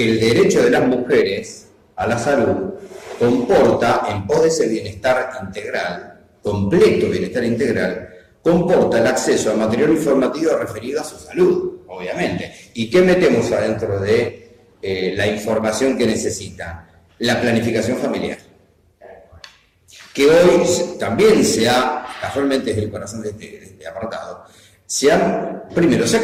el derecho de las mujeres a la salud comporta, en pos de ese bienestar integral, completo bienestar integral, comporta el acceso a material informativo referido a su salud, obviamente. ¿Y qué metemos adentro de la información que necesitan? La planificación familiar. Que hoy también casualmente es el corazón de este apartado, primero, se ha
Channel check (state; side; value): identical; both; correlation 1.00